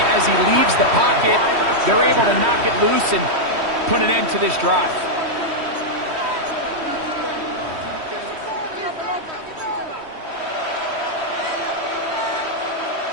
as he leaves the pocket. They're able to knock it loose and put an end to this drive.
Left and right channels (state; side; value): late; left; 3.1 ms